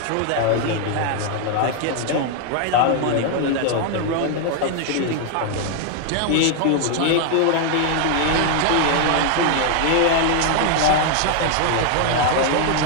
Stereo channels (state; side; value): different; both; correlation 0.00